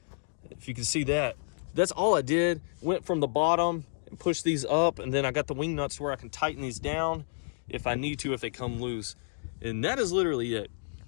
If you can see that, that's all I did. Went from the bottom and pushed these up, and then I got the wing nuts to where I can tighten these down if I need to, if they come loose. And that is literally it.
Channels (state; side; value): silent; right; digital silence